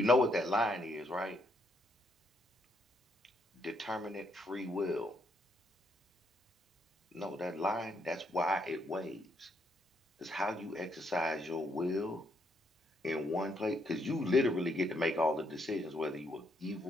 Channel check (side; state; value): both; normal; correlation 0.74